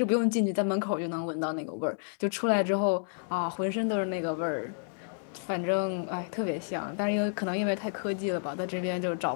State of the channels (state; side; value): silent; right; digital silence